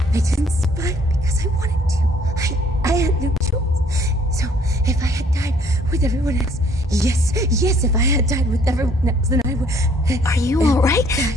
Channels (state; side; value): normal; both; correlation 0.61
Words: I didn't survive because I wanted to. I had no choice. So if I had died with everyone else, yes, if I had died with everyone else, then I would. Are you all right?